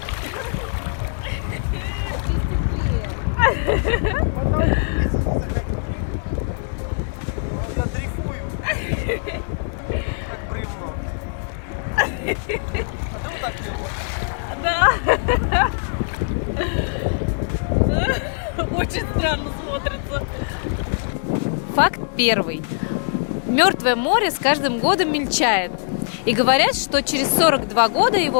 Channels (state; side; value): silent; right; digital silence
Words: Я дрейфую. Как бревно. А ты вот так делаешь? Да. Очень странно смотрится. Факт первый. Мертвое море с каждым годом мельчает. И говорят, что через 42 года